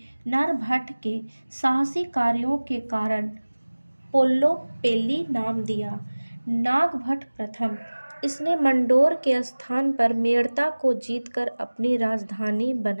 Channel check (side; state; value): both; inverted; correlation -1.00